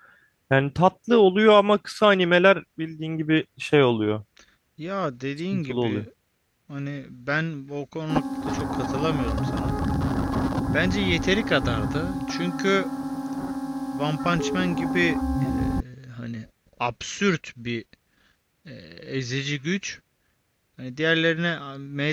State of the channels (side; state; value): both; identical; correlation 1.00